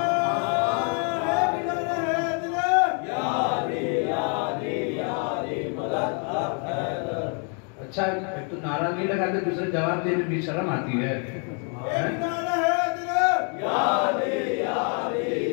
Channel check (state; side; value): quieter; right; 39.9 dB